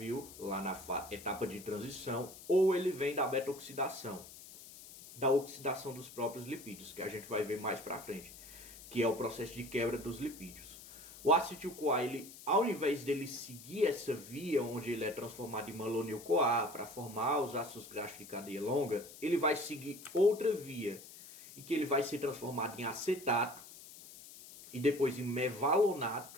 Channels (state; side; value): noise; left; hiss, 16 dB below the sound